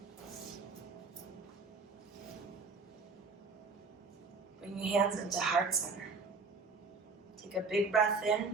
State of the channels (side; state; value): left; quieter; 4.3 dB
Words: Bring your hands into heart center. Take a big breath